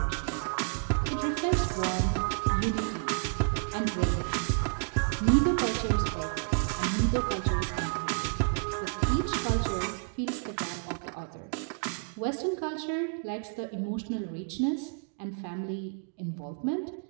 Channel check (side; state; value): left; silent; 58 dB below the other